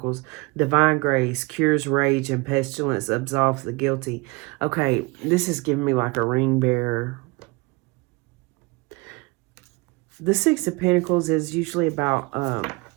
divine grace, cures rage and pestilence, absolves the guilty. Okay, this is giving me like a ring bearer. The Six of Pentacles is usually about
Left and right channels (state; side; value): quieter; left; 26.4 dB